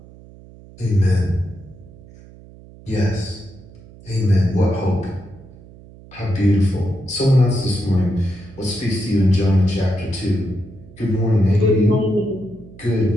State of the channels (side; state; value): right; noise; hum, 21 dB below the sound